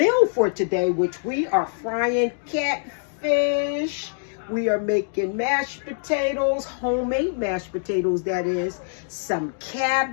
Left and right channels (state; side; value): silent; right; digital silence